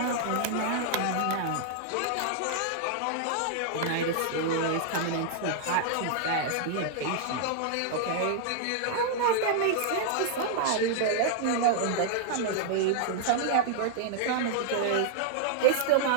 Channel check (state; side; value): different; both; correlation -0.01